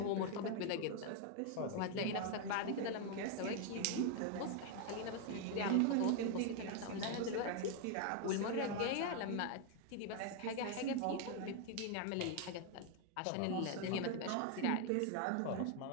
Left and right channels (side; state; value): both; different; correlation 0.01